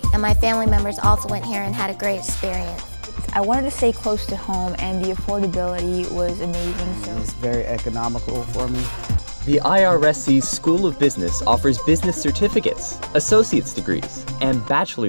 and my family members also went here and had a great experience. I wanted to stay close to home, and the affordability was amazing. So it's very economical for me. The IRSC School of Business offers business certificates, associate's degrees, and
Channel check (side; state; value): both; inverted; correlation -1.00